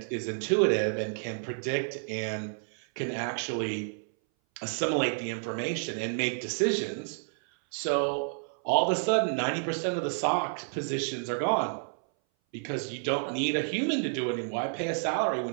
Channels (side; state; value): left; silent; 58 dB below the other